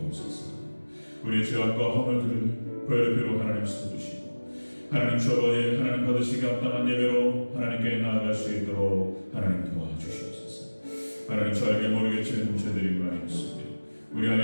우리의 죄악과 허물들을 보혈비로 하나님 씻어주시고 하나님 주 아버지 하나님 받으시기 합당한 예배로 하나님께 나아갈 수 있도록 하나님 도와주시옵소서. 하나님 저 알게 모르게 지은 죄들이 많이 있으며 우리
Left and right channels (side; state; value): both; inverted; correlation -1.00